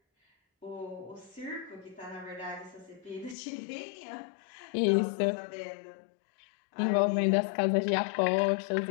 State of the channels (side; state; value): right; drops out; at 3.4 s